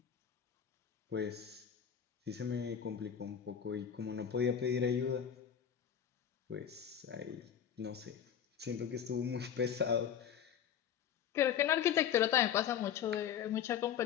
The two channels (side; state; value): right; quieter; 8.8 dB